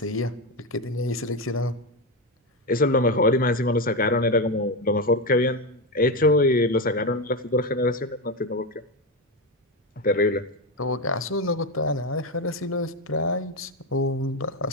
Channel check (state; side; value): normal; both; correlation 0.13